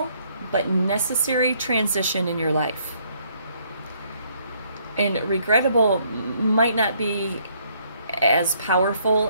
but necessary transition in your life. And regrettable might not be as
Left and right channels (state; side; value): inverted; both; correlation -0.68